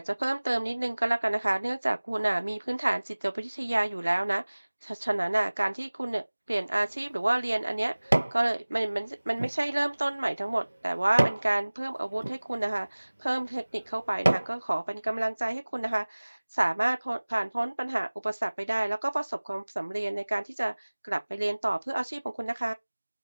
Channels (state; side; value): inverted; both; correlation -1.00